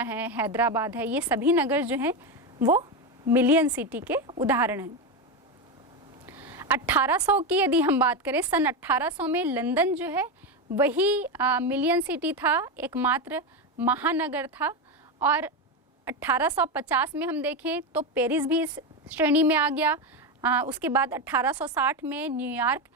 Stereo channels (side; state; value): both; normal; correlation 0.13